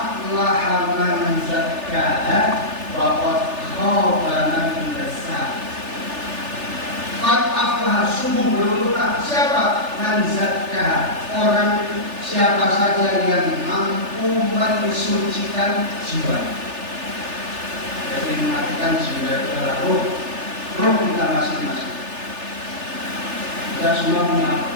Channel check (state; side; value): late; left; 3.4 ms